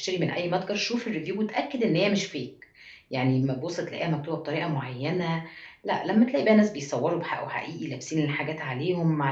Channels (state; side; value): identical; both; correlation 1.00